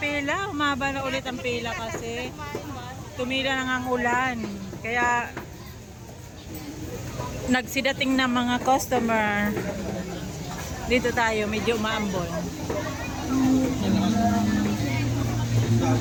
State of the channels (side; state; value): both; identical; correlation 1.00